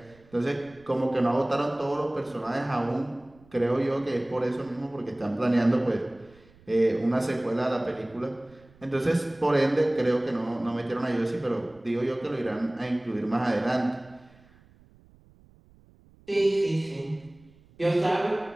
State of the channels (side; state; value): right; noise; rumble, 27 dB below the sound